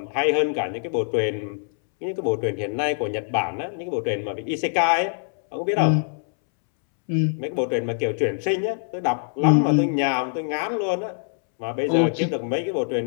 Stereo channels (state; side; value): silent; right; 63 dB below the other